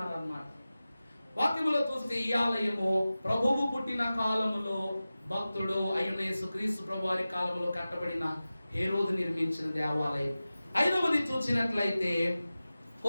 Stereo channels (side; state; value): both; inverted; correlation -0.96